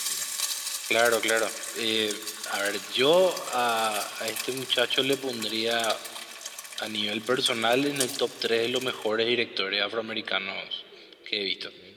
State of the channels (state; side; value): identical; both; correlation 1.00